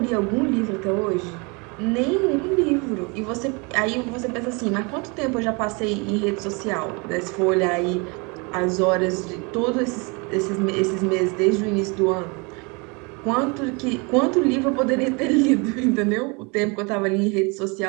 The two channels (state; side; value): quieter; left; 30.2 dB